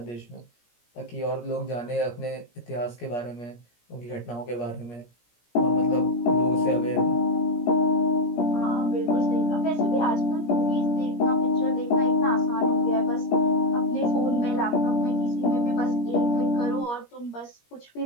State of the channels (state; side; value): late; right; 17 ms